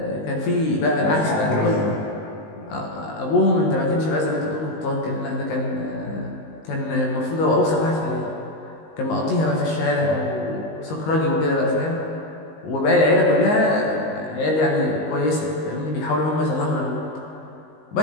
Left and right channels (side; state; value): right; late; 19 ms